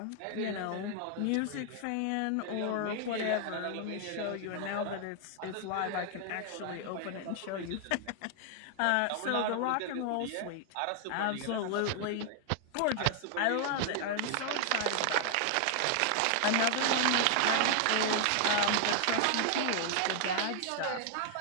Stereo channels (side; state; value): both; different; correlation 0.00